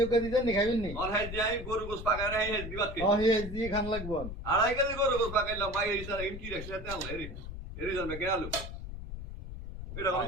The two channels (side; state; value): left; noise; rumble, 9 dB below the sound